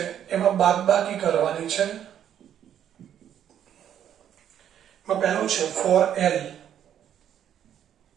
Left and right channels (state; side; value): quieter; left; 9.9 dB